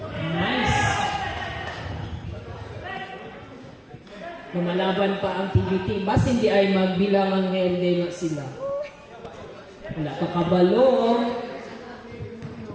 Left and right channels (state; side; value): identical; both; correlation 1.00